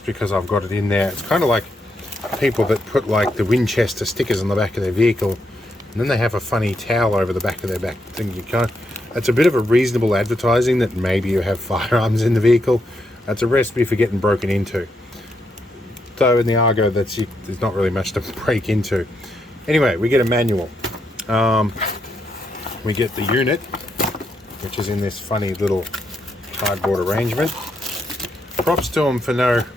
because I've got it in there. It's kind of like people that put like the Winchester stickers on the back of their vehicle, and then they have a funny towel over the back of their back thing. You can't, it's a bit of a reasonable advertising that maybe you have firearms in the vehicle. That's a recipe for getting broken into. Though in the Argo, there's not really much to break into. Anyway, we get a manual. We get the unit, which is in this funny little cardboard arrangement. Props to them for no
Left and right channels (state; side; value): normal; both; correlation 0.80